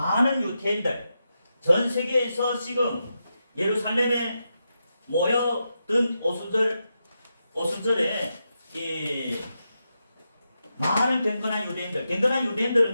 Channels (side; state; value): both; inverted; correlation -0.87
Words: 유대인들 전 세계에서 지금 예루살렘에 모여든 오순절에 많은 경건한 유대인들은